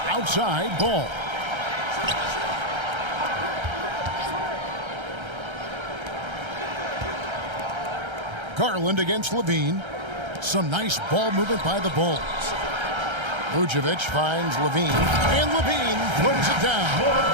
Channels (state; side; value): late; left; 1.3 ms